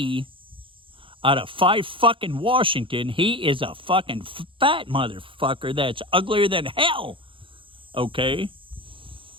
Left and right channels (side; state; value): left; late; 0.25 ms